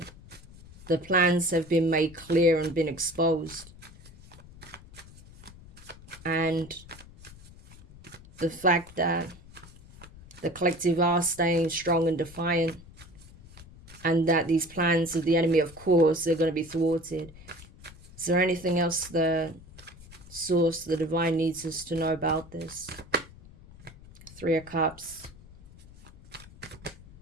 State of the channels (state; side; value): noise; left; rumble, 20 dB below the sound